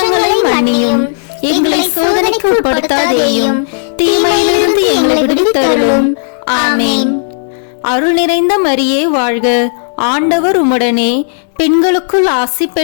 மன்னியும். எங்களை சோதனைக்கு உட்படுத்தாதேயும், தீமையிலிருந்து எங்களை விடுவித்தருளும். ஆமேன். அருள் நிறைந்த மரியே வாழ்க, ஆண்டவர் உம்முடனே, பெண்களுக்குள் ஆசி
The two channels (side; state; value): right; silent; 73 dB below the other